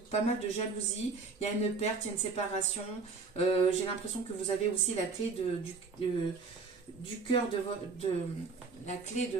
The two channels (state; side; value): quieter; left; 4.5 dB